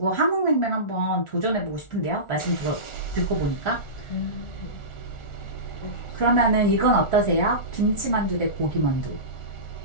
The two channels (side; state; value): right; late; 1.4 ms